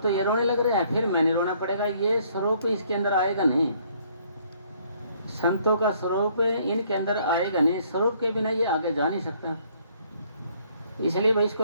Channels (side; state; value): both; inverted; correlation -0.64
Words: तो ये रोने लग रहा है, फिर मैंने रोना पड़ेगा। ये स्वरूप इसके अंदर आएगा नहीं, संतों का स्वरूप इनके अंदर आएगा नहीं। स्वरूप के बिना ये आगे जा नहीं सकता, इसलिए भाई